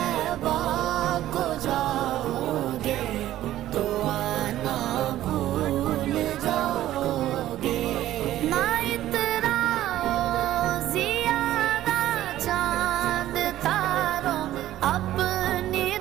को जाओगे तो आना भूल जाओगे। ना इतराओ ज़ियादा चांद तारों अपनी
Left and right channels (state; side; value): quieter; left; 13.7 dB